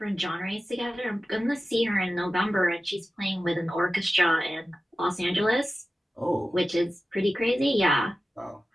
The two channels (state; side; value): normal; both; correlation 0.94